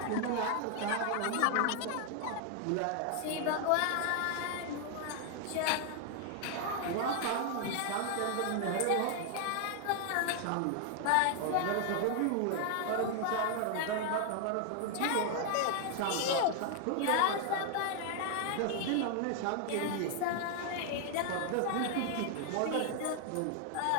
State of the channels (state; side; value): different; both; correlation 0.00